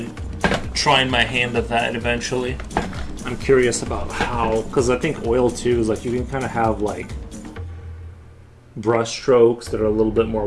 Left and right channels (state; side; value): identical; both; correlation 1.00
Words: trying my hand at that eventually. I'm curious about how, because I think oil too is like you can kind of have like brush strokes that are a little bit more